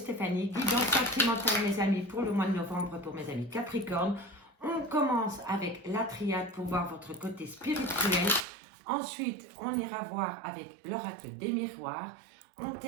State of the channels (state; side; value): drops out; left; at 8.5 s